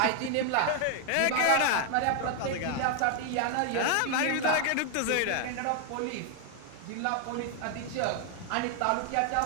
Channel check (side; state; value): both; different; correlation 0.00